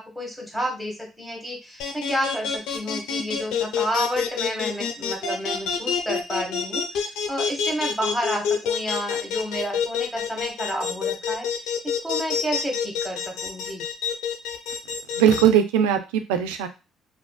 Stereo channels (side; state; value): both; normal; correlation 0.50